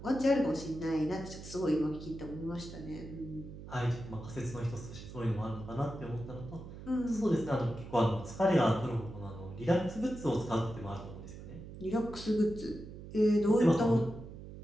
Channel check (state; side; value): noise; right; hum, 13 dB below the sound